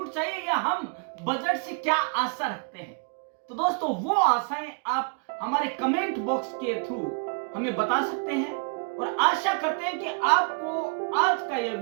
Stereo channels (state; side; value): quieter; left; 38.5 dB